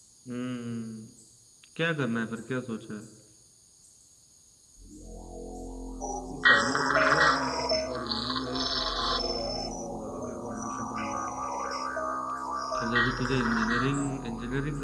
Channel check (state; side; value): identical; both; correlation 1.00